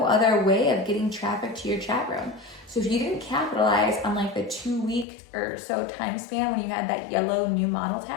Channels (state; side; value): drops out; right; at 5.1 s